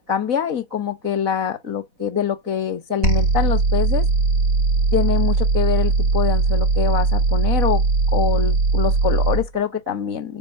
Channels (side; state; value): left; late; 4.1 ms